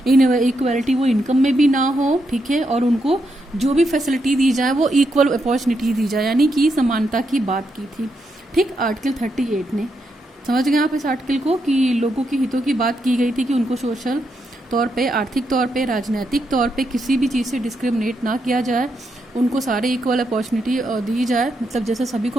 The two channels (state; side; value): normal; both; correlation 0.81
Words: इनइक्वालिटी वो इनकम में भी ना हो, ठीक है, और उनको जो भी फैसिलिटी दी जाए वो इक्वल अपॉर्चुनिटी दी जाए, यानी कि समानता की बात की थी, ठीक। आर्टिकल 38 ने, समझ गए आप इस आर्टिकल को, कि लोगों की हितों की बात की गई थी कि उनको सोशल तौर पे, आर्थिक तौर पे, राजनीतिक तौर पे किसी भी चीज़ से डिस्क्रिमिनेट ना किया जाए, उनको सारे इक्वल अपॉर्चुनिटी दी जाए, मतलब जैसे सभी